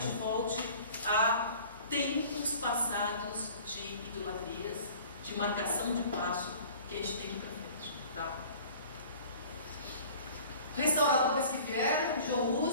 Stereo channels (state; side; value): inverted; both; correlation -0.46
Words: volte a tempos passados de idolatrias, de marcação de passo que a gente tem que ir para frente. Tá? Restauradores que vieram, João